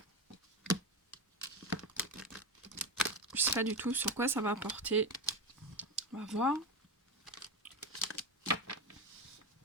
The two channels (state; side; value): normal; both; correlation 0.16